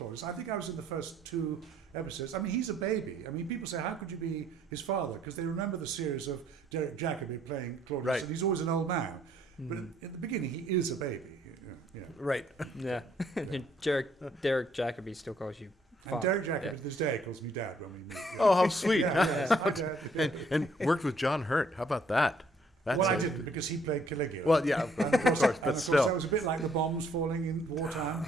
I think I was in the first 2 episodes. I mean, he's a baby. I mean, people say, how could you be his father? Because they remember the series of Derek Jacobi playing Claudius, right. and he's always an old man. But at the beginning, he is a baby. Yeah. Right. Yeah. Derek Jacobi still calls you father. And Derek Jacobi to this day calls me dad when we meet. Yeah. Oh, how sweet. Yes, hi, Dad. And worked with John Hurt. How about that? That's I didn't, because he played Caligula. Well, yeah, of course, but still. That was a bit like the bombs falling in wartime.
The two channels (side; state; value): both; normal; correlation 0.66